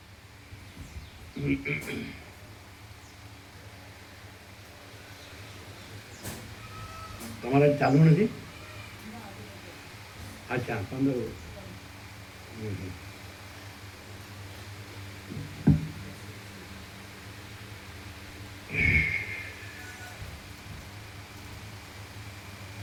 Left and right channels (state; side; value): identical; both; correlation 1.00